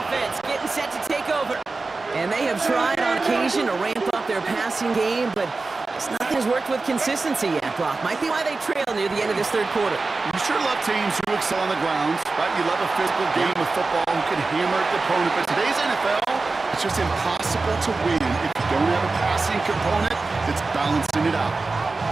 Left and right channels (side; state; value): left; quieter; 3.7 dB